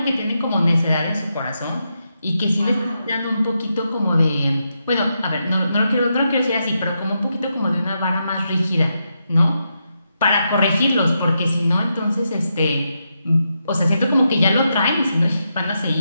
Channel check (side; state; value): both; inverted; correlation -0.84